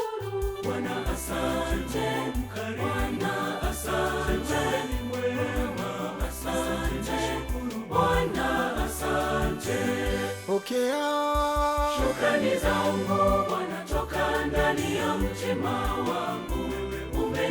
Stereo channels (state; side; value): identical; both; correlation 1.00